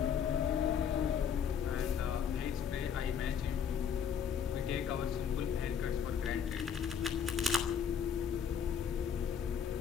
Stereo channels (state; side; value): quieter; right; 7.6 dB